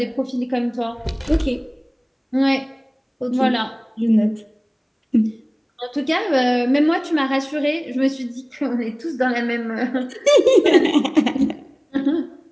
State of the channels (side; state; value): both; identical; correlation 1.00